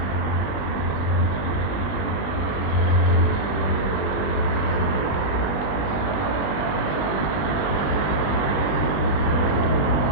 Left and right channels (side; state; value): right; late; 21 ms